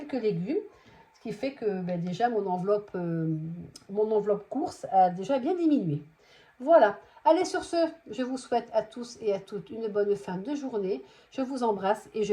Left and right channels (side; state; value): both; identical; correlation 1.00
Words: légumes. Ce qui fait que ben, déjà mon enveloppe course a déjà bien diminué. Voilà. Allez, sur ce, je vous souhaite à tous et à toutes une bonne fin de journée. Je vous embrasse et